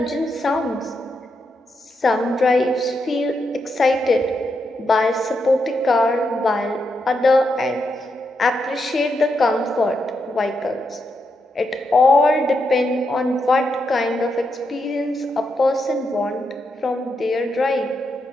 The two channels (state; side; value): normal; both; correlation 0.83